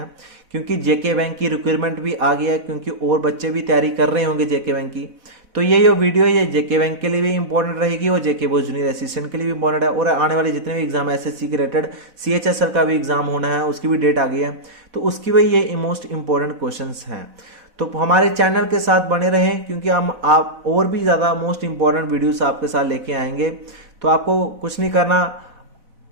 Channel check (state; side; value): late; left; 4.0 ms